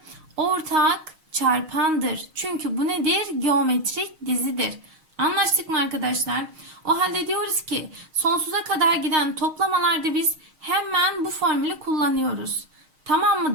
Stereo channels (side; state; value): left; late; 6.4 ms